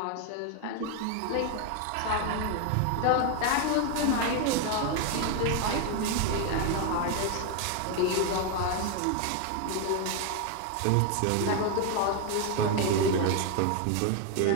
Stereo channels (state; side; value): different; both; correlation 0.01